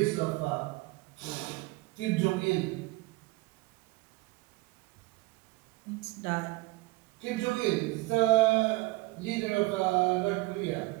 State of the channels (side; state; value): left; quieter; 21.3 dB